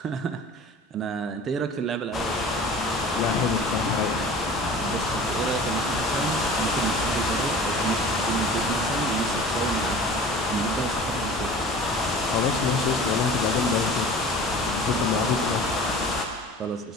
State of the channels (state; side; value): normal; both; correlation 0.41